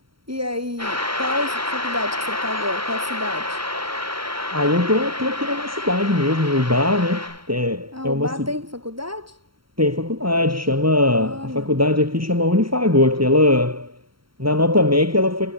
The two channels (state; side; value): late; left; 0.74 ms